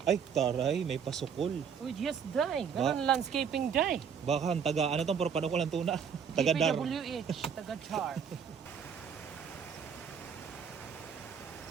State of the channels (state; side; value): quieter; left; 7.1 dB